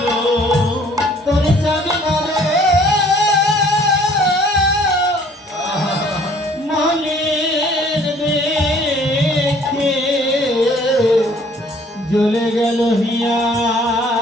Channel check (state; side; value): normal; both; correlation 0.57